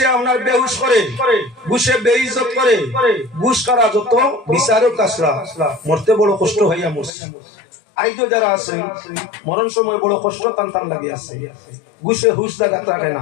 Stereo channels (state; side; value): drops out; right; at 7.1 s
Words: আপনার বেহুশ করে, ঘুষে বেইজ্জত করে। ঘুষ কারা যত বিচারক কাছরা মরতে বড় কষ্ট হইয়া মরছে। আইজো যারা আছে মরণ সময় বড় কষ্ট টান লাগে আছে। ঘুষে হুশ জায়গা রাখে না,